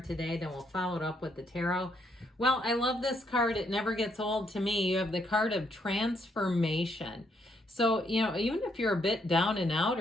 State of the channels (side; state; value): both; normal; correlation 0.74